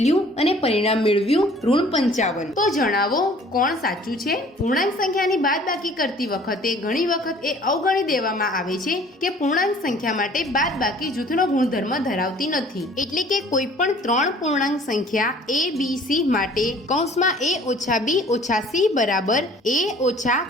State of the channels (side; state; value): both; normal; correlation 0.52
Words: અને પરિણામ મેળવ્યું ઋણ 55। તો જણાવો કોણ સાચું છે? પૂર્ણાંક સંખ્યાની બાદબાકી કરતી વખતે ઘણી વખત એ અવગણી દેવામાં આવે છે કે પૂર્ણાંક સંખ્યા માટે બાદબાકી જૂથનો ગુણધર્મ ધરાવતી નથી। એટલે કે કોઈ પણ 3 પૂર્ણાંક સંખ્યા a b c માટે કૌંસમાં a ઓછા b ઓછા c બરાબર a ઓછા